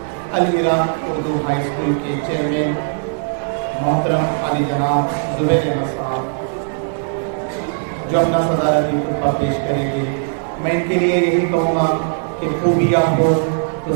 العراق اردو ہائی اسکول کے چیئرمین محترم علی جناب زبیر احمد صاحب، جو اپنا صدارتی خطبہ پیش کریں گے۔ میں ان کے لیے یہی کہوں گا کہ خوبیاں ہو تو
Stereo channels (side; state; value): left; silent; 67 dB below the other